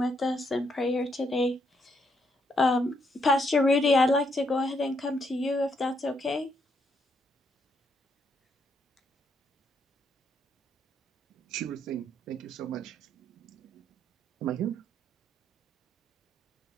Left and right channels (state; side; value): normal; both; correlation 0.75